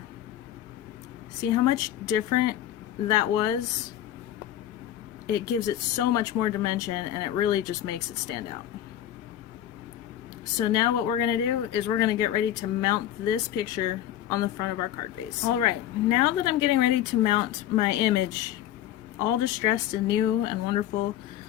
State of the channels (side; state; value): right; quieter; 11.8 dB